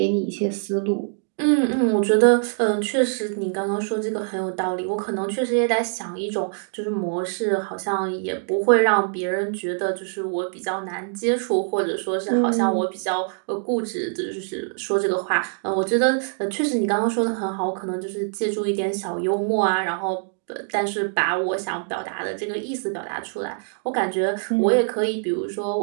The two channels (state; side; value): silent; left; 63 dB below the other